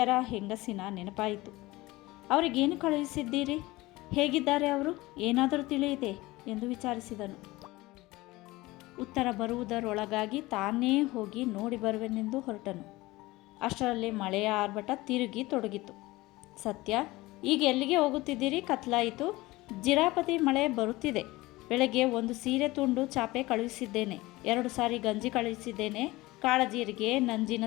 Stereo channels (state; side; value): quieter; right; 20.0 dB